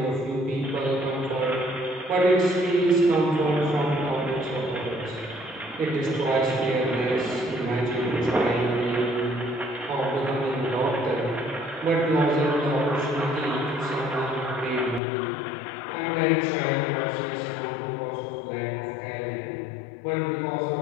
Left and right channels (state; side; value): drops out; right; at 15.0 s